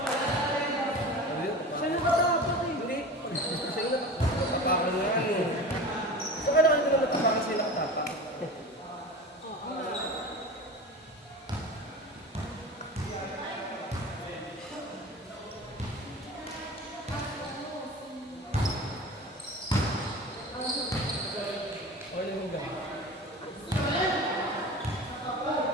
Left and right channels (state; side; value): normal; both; correlation 0.33